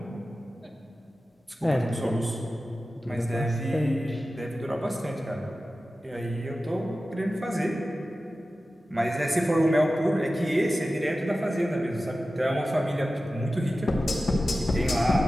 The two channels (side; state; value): both; normal; correlation 0.94